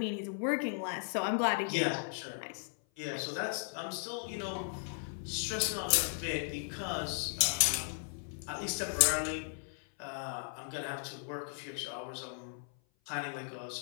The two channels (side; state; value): right; silent; 54 dB below the other